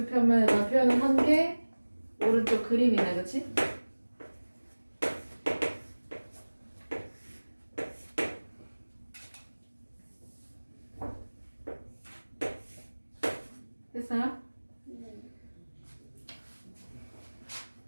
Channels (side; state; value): both; inverted; correlation -1.00